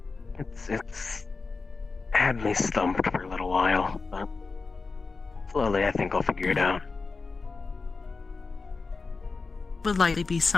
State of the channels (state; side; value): quieter; right; 4.2 dB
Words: It's had me stumped for a little while, but slowly I think I'll figure it out. Would likely be